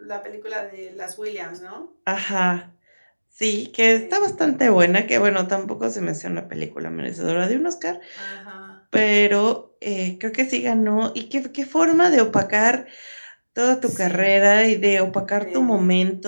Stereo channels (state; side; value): inverted; both; correlation -1.00